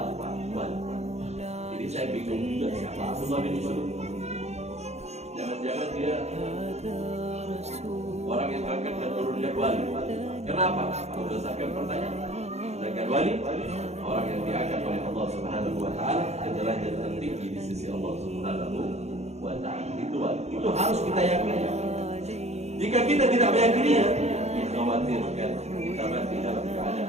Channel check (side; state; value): left; late; 0.32 ms